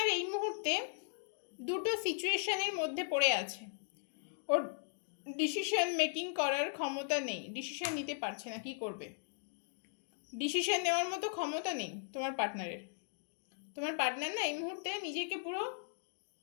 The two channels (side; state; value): right; silent; digital silence